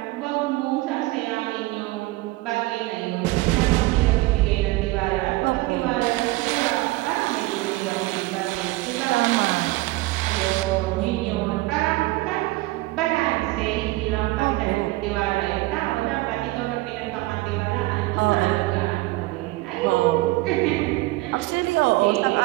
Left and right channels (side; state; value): left; quieter; 20.4 dB